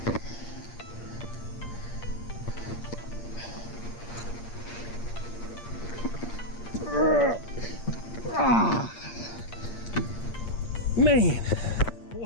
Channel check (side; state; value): right; late; 8.6 ms